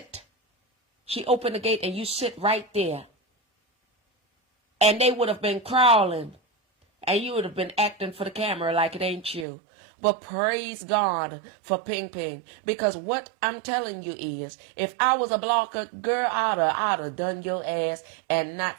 She opened the gate and you sit right there. And they would have been crawling. And you would have been acting for the camera like it ain't you. But praise God for Ping Ping. Because what I'm telling you is, if I was a blocker, girl, I'd have done your ass and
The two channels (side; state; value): left; drops out; at 9.5 s